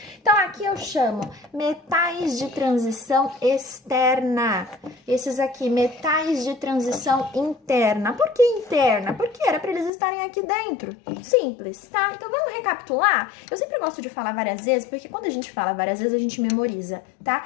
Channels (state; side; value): drops out; right; at 9.9 s